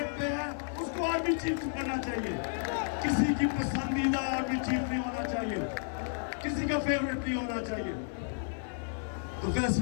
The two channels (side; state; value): right; silent; 56 dB below the other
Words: पे है उसको आर्मी चीफ बनना चाहिए। किसी की पसंदीदा आर्मी चीफ नहीं होना चाहिए, किसी का फेवरेट नहीं होना चाहिए। तो